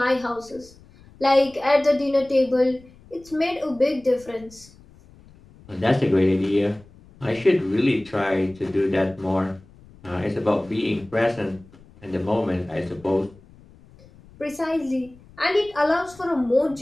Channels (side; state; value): left; noise; rumble, 24 dB below the sound